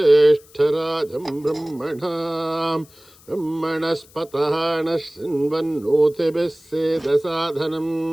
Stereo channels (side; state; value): left; noise; hiss, 26 dB below the sound